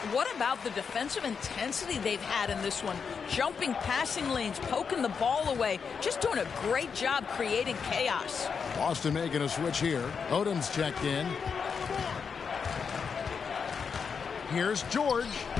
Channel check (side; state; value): right; quieter; 6.1 dB